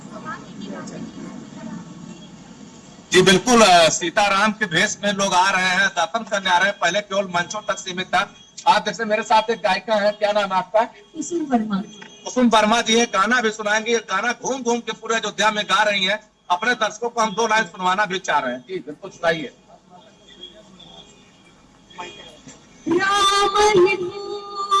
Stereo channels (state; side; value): identical; both; correlation 1.00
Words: जी बिल्कुल, सीताराम के भेष में लोग आ रहे हैं, दर्शन करने आ रहे हैं। पहले केवल मंचों तक सीमित था। आप जैसे मेरे साथ एक गायिका है, क्या नाम है आपका? कुसुम वर्मा। कुसुम वर्मा जी है, गाना भी सुनाएंगे। गाना घूम घूम के पूरे अयोध्या में गा रही हैं। अपने दर्शकों को हम 2 लाइन सुनवाना भी चाह रहे हैं। जी बिल्कुल सुनाइए। राम ही